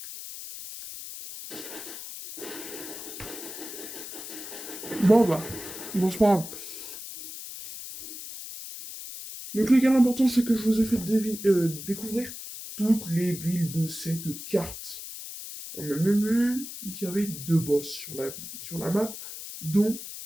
Bon bah, bon c'est pas grave. Donc les gars, l'important c'est que je vous ai fait découvrir toutes les villes de cette carte. On a même vu qu'il y avait deux boss sur la map, dont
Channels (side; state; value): left; noise; hiss, 10 dB below the sound